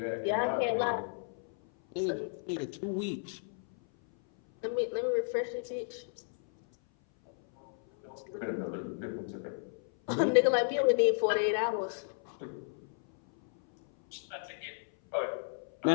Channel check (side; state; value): right; silent; 56 dB below the other